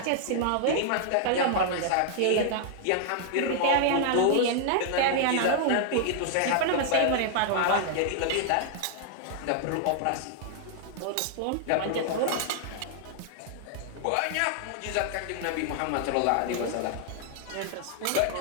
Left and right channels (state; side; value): different; both; correlation 0.00